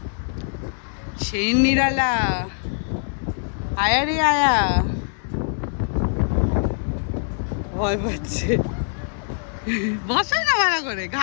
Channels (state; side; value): silent; right; 63 dB below the other